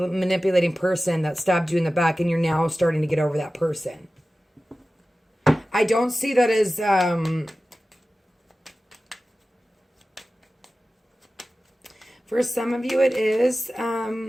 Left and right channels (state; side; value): normal; both; correlation 0.95